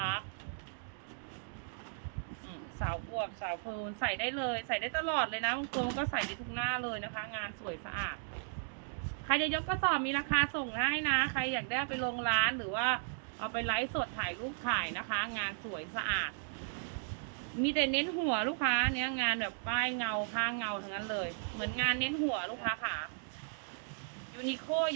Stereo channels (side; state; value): left; silent; digital silence